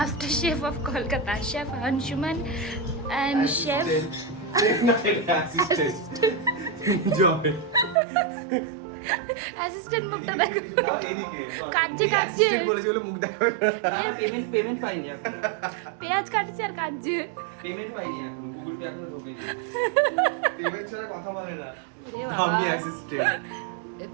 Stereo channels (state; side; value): drops out; left; at 8.0 s